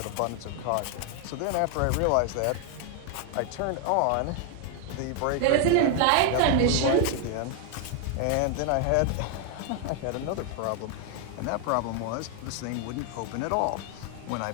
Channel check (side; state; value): both; different; correlation 0.00